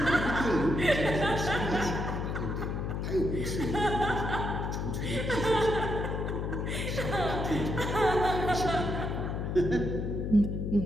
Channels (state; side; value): noise; left; hum, 2 dB below the sound